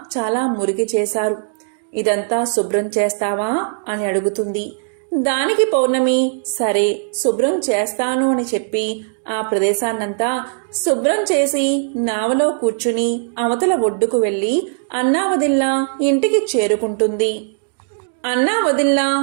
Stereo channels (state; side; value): silent; left; digital silence